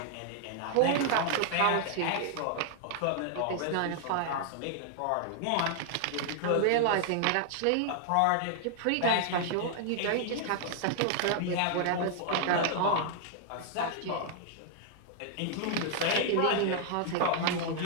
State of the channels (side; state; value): both; different; correlation -0.01